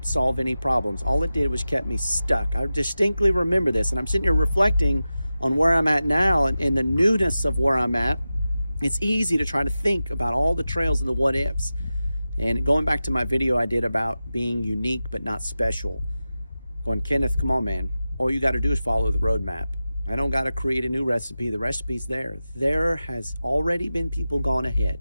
solve any problems. All it did was kept me stuck. I distinctly remember this, and I'm sitting here reflecting on where I'm at now and the newness of where I'm at. It's easy to try to think about all the trails and the what ifs. And going back to my video I did about being unique but not special, going, Kenneth, come on, man. All you got to do is follow the roadmap. I don't got to create a new recipe. The recipe's there. There has already been people gone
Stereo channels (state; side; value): inverted; both; correlation -0.94